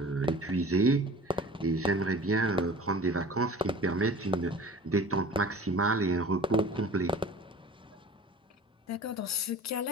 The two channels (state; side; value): normal; both; correlation 0.42